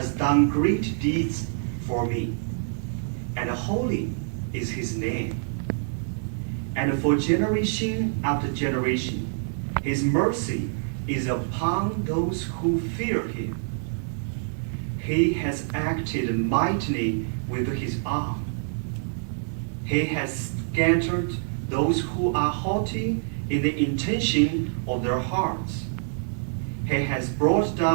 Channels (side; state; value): left; silent; digital silence